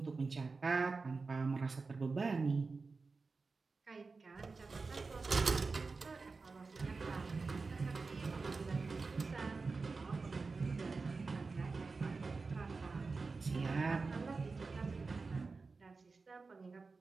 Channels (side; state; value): left; quieter; 4.2 dB